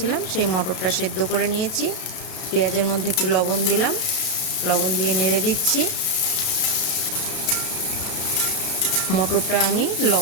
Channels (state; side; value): late; right; 32 ms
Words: সেই মটরটা সেদ্ধ করে নিয়েছি। পেঁয়াজের মধ্যে একটু লবণ দিলাম, লবণ দিয়ে নেড়ে দিচ্ছি। মটরটা আমি